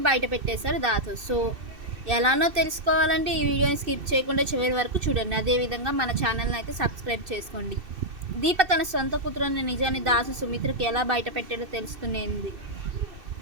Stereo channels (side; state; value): left; late; 2.6 ms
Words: బయట పెట్టేశాడు దాసు. సో ఎలానో తెలుసుకోవాలంటే ఈ వీడియోని స్కిప్ చేయకుండా చివరి వరకు చూడండి. అదేవిధంగా మన ఛానల్ని అయితే సబ్స్క్రైబ్ చేసుకోండి. దీప తన సొంత కూతురు అనే నిజాన్ని దాసు సుమిత్రకి ఎలా బయట పెట్టాడో తెలుసుకునేది.